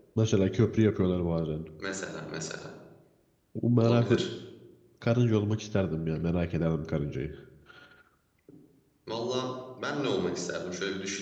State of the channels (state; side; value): identical; both; correlation 1.00